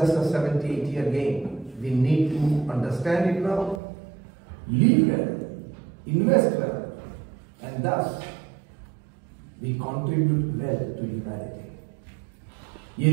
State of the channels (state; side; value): drops out; left; at 3.8 s